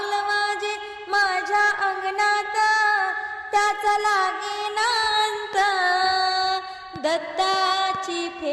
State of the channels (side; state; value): both; identical; correlation 1.00